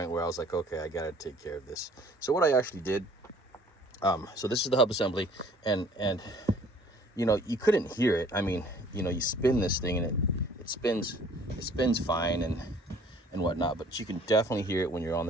where I was like, okay, I gotta take care of this. So what I actually did, so this is the hub assembly, and you couldn't hear it. I mean, you spin this thing and it spins fine and whatnot, but you can definitely hear it when you're on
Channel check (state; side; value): normal; both; correlation 0.55